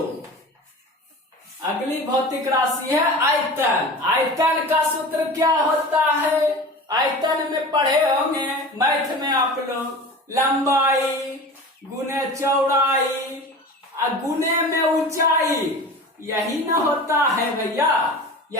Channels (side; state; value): both; normal; correlation 0.35